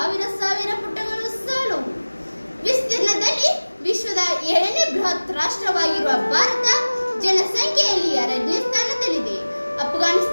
ಪುಟಗಳು ಸಾಲವು. ವಿಸ್ತೀರ್ಣದಲ್ಲಿ ವಿಶ್ವದ 7ನೇ ಬೃಹತ್ ರಾಷ್ಟ್ರವಾಗಿರುವ ಭಾರತ ಜನಸಂಖ್ಯೆಯಲ್ಲಿ 2ನೇ ಸ್ಥಾನದಲ್ಲಿದೆ.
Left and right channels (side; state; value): both; inverted; correlation -1.00